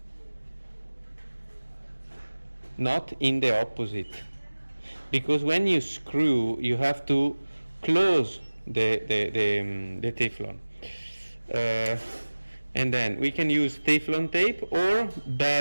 Not in the opposite. Because when you screw, you have to close the Teflon. And then we can use Teflon tape, or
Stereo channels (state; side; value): inverted; both; correlation -1.00